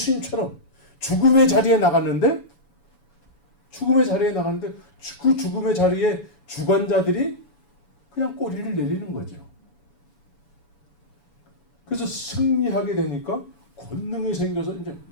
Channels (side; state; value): right; late; 7.1 ms